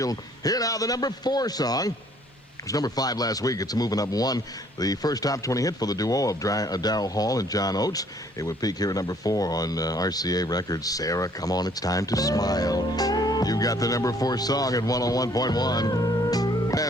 Here now, the number 4 song. It was number 5 last week. It's moving up 1. The first top 20 hit for the duo of Darryl Hall and John Oates. It would peak here at number 4 on RCA Records. Sarah, come on, it's time to smile. You got the number 4 song at 101.1.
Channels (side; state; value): both; normal; correlation 0.61